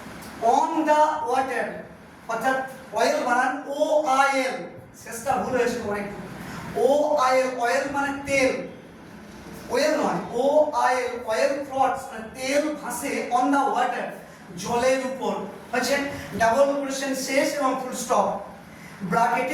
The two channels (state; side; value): identical; both; correlation 1.00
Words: on the water, অর্থাৎ oil বানান O I এল, শেষটা ভুল হয়েছে অনেক, ও আই এল, অয়েল মানে তেল, ওয়েল নয়, ও আই এল, অয়েল ফ্লটস মানে তেল ভাসে, অন দা ওয়াটার জলের উপর, হচ্ছে ডাবল কোটেশন শেষ এবং ফুল স্টপ,